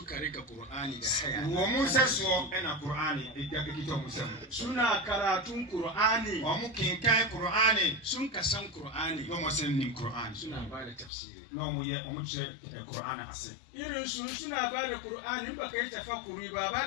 rika Qur'ani da haya wo mu saso ena Qur'ani da kito mu sam suna karatun Qur'ani wo mu kinkai Qur'ani sun ka san Qur'ani no mu san nim Qur'ani suna ba da tafsiri no mu ye mu ce Qur'ani ase irin su suna ba da Qur'ani ba kai tafakkuri ba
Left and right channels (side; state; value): right; drops out; at 11.1 s